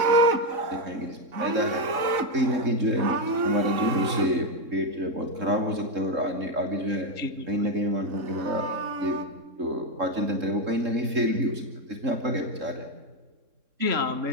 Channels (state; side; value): late; left; 3.7 ms